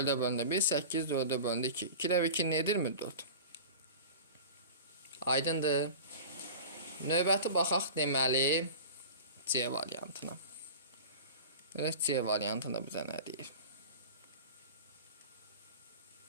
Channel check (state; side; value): inverted; both; correlation -0.34